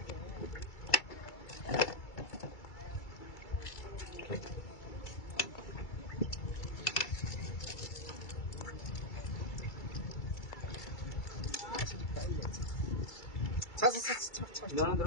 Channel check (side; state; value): right; late; 2.3 ms